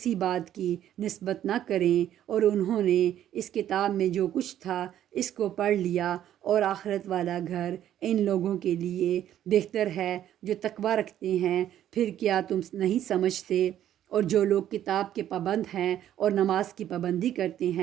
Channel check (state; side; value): quieter; left; 11.4 dB